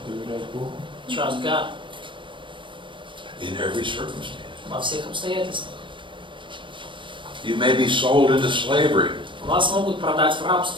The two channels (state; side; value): late; left; 0.24 ms